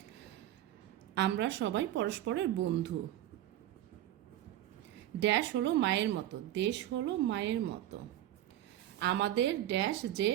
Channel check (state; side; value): quieter; left; 12.9 dB